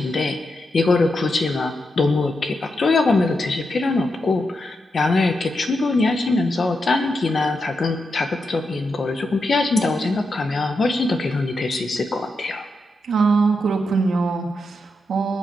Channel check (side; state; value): both; normal; correlation 0.86